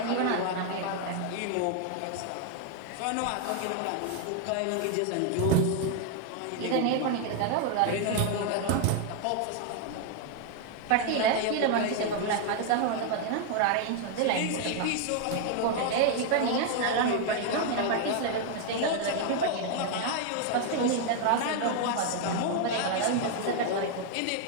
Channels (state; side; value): different; both; correlation 0.00